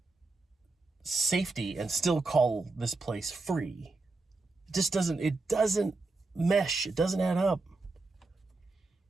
safety and still call this place free. It doesn't mesh. It doesn't add up.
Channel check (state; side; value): quieter; left; 3.5 dB